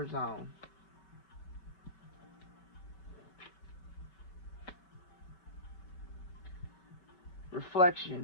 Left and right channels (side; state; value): right; late; 5.3 ms